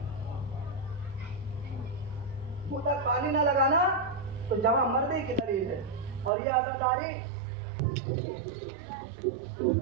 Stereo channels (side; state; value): left; drops out; at 6.3 s